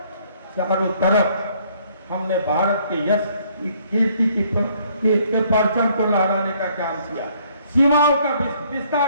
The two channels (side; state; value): both; inverted; correlation -0.64